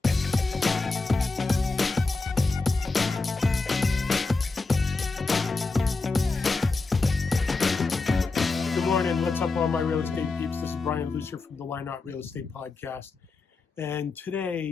Good morning. What's up, all my real estate peeps? This is Brian Lucier from the Why Not Real Estate Podcast. And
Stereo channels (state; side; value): quieter; right; 3.8 dB